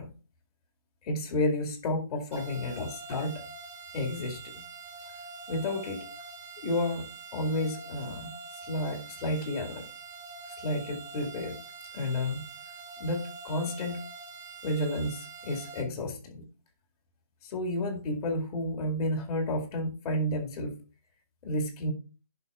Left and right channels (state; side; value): inverted; both; correlation -0.43